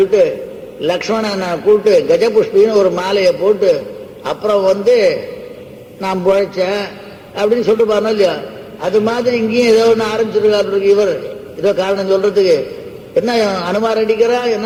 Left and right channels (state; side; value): identical; both; correlation 1.00